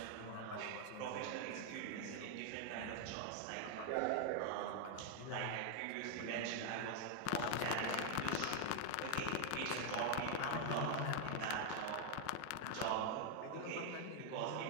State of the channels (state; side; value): different; both; correlation 0.00